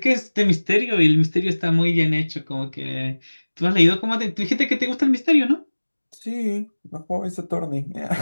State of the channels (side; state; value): both; inverted; correlation -1.00